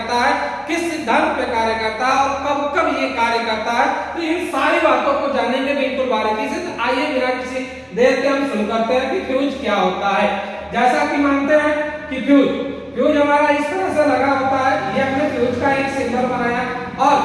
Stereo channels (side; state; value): both; identical; correlation 1.00